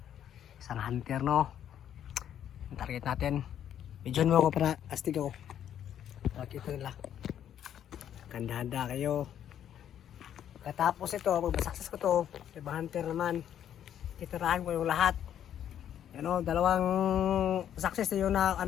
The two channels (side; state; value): right; quieter; 10.1 dB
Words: Isang hunter, no? Ang target natin. Medyon mo ako para astig ako. Pakita nila. Handa-handa kayo. Katapos ito, pag masakses ko to, ibang hunter naman. Titirahan ko yung lahat. Ano, dalawang success na yun na